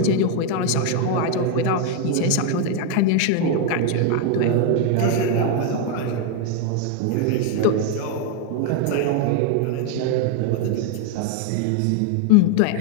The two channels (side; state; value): both; different; correlation 0.01